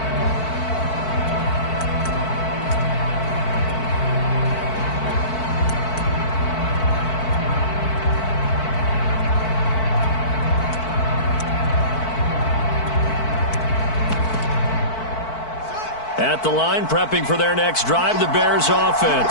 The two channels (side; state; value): right; late; 4.5 ms